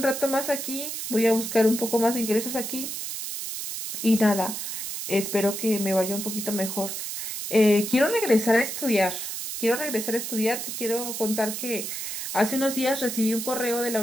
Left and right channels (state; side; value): noise; right; hiss, 5 dB below the sound